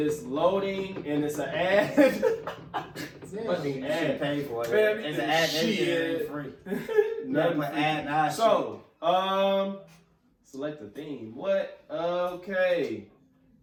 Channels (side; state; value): both; identical; correlation 1.00